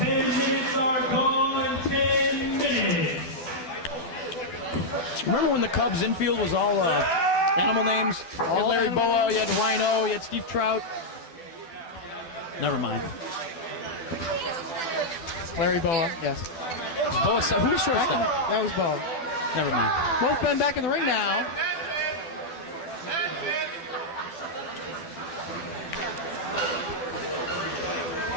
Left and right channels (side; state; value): right; late; 12 ms